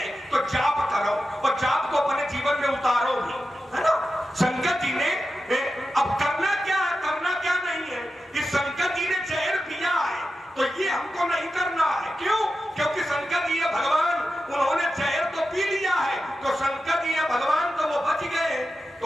तो जाप करो और जाप को अपने जीवन में उतारो भी, है ना। शंकर जी ने अब करना क्या है, करना क्या नहीं है। इस शंकर जी ने जहर पिया है तो ये हमको नहीं करना है। क्यों? क्योंकि शंकर जी है भगवान, उन्होंने जहर तो पी लिया है, तो शंकर जी है भगवान तो वो बच गए।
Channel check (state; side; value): normal; both; correlation 0.92